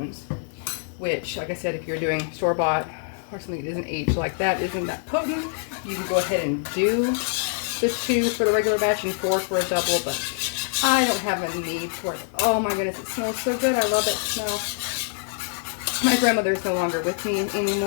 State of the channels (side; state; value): right; silent; 62 dB below the other